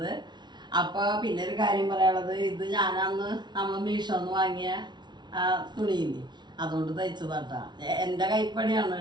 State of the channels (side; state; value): left; late; 0.21 ms